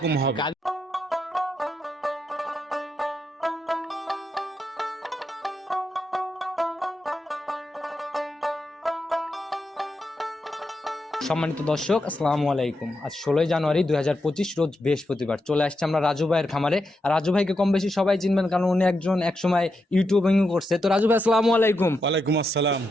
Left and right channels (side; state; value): both; normal; correlation 0.85